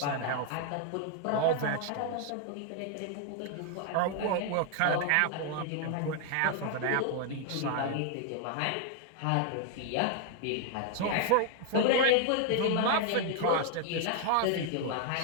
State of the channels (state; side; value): different; both; correlation 0.00